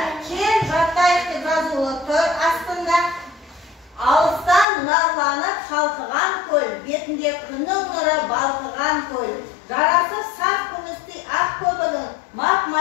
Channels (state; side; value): drops out; right; at 4.7 s